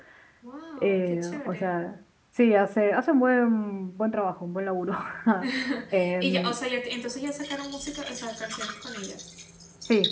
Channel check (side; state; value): both; identical; correlation 1.00